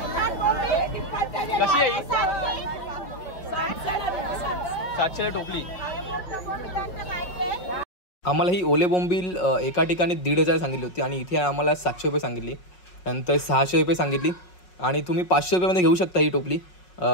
कशी आहे? 700 टोपली. आम्हाला ही ओले बोंबील एका ठिकाणी 1,500 सांगितली होती आणि इथे आम्हाला 700 रुपये सांगितली. नंतर 600 रुपये सांगितली. आणि तुम्ही 500 रुपयामध्ये घेऊ शकता ही टोपली.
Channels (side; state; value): right; late; 5.5 ms